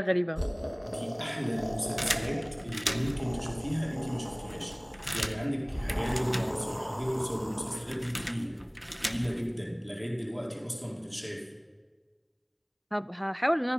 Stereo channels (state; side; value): identical; both; correlation 1.00